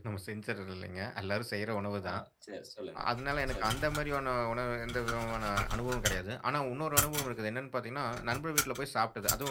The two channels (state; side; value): identical; both; correlation 1.00